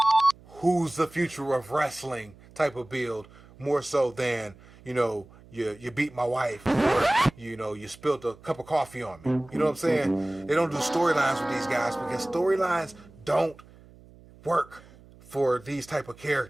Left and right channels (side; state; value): right; noise; hum, 23 dB below the sound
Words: who's the future of wrestling type of build, more so than, you beat my wife, or, you spilled a cup of coffee on me. You know what I'm saying? They don't do storylines with these guys because storylines don't work for these type of